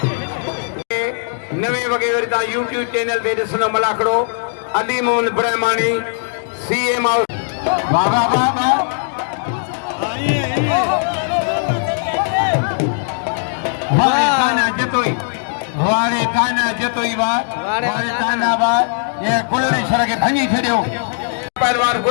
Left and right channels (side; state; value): right; silent; digital silence